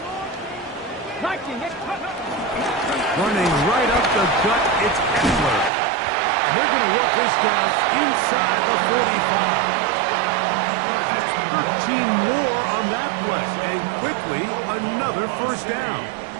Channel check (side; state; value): left; drops out; at 5.7 s